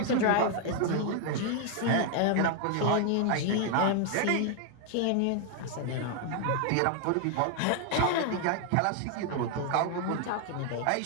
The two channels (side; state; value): both; different; correlation 0.00